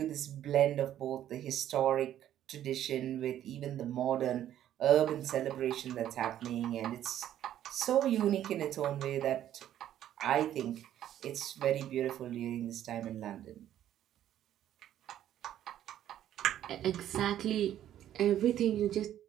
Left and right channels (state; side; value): quieter; left; 11.6 dB